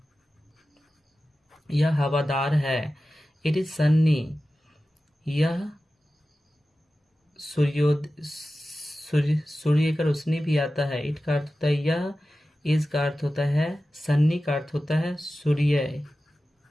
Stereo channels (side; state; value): both; normal; correlation 0.94